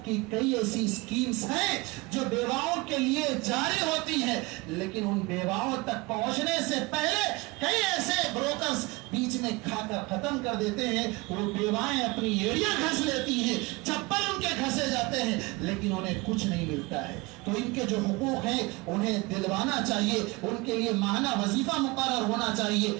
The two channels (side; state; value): left; quieter; 24.0 dB